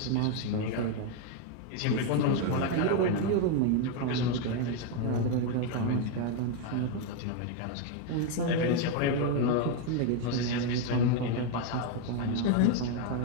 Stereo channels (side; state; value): both; different; correlation 0.01